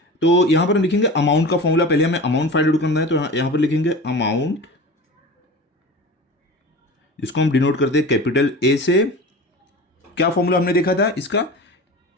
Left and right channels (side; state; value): both; normal; correlation 0.33